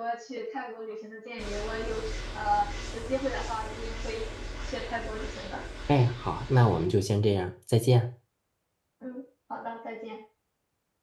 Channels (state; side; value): identical; both; correlation 1.00